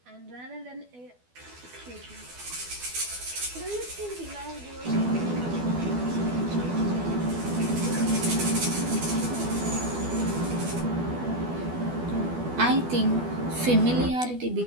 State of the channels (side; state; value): left; late; 12 ms